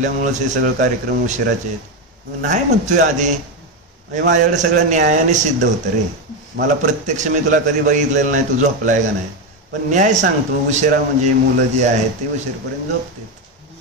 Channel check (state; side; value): normal; both; correlation 0.10